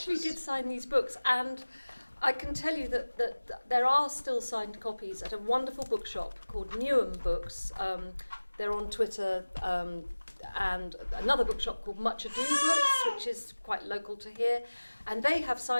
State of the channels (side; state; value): both; inverted; correlation -1.00